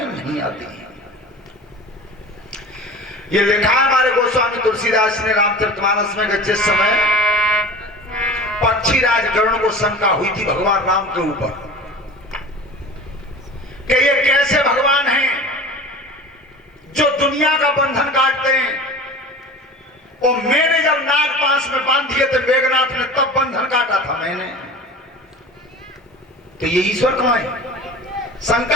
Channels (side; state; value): both; normal; correlation 0.37